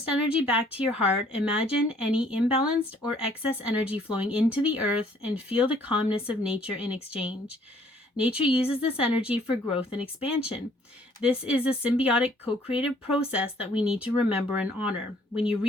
energy back to your heart. Imagine any imbalanced or excess energy flowing into the earth and feel the calmness of nature in exchange. Nature uses this energy for growth and expansion. This is a symbiotic co-creative process that we need to remember and honor. When you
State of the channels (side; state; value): both; normal; correlation 0.61